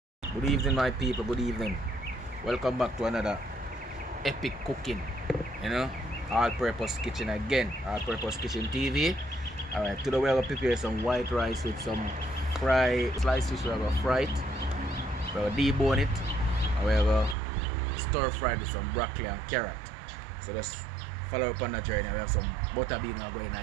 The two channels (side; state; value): left; drops out; at 17.4 s